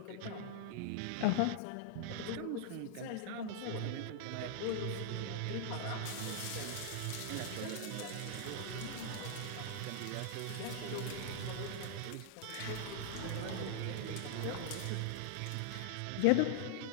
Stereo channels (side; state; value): both; different; correlation -0.01